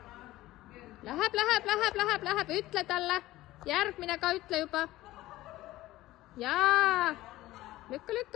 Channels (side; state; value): right; quieter; 16.7 dB